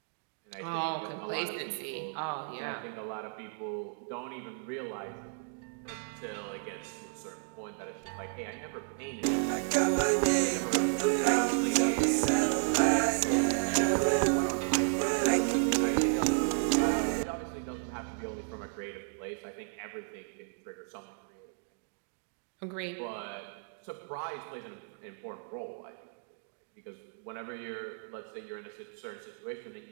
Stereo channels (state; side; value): silent; left; digital silence